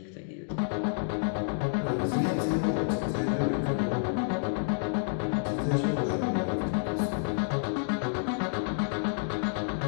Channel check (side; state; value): right; silent; digital silence